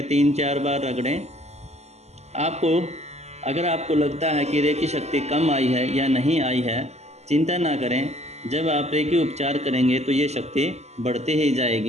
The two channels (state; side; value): late; left; 0.32 ms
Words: 3-4 बार रगड़ें। अगर आपको लगता है कि रेकी शक्ति कम आई है या नहीं आई है, चिंता ना करें। जब आप रेकी उपचार करेंगे तो ये शक्ति बढ़ती ही